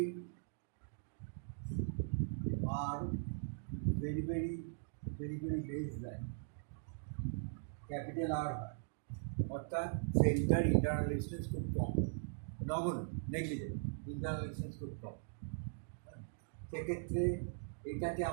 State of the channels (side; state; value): left; silent; digital silence